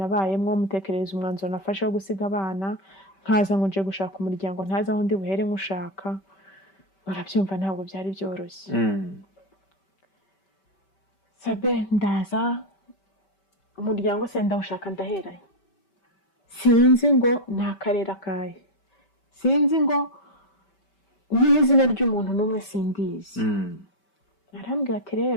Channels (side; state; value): right; late; 5.2 ms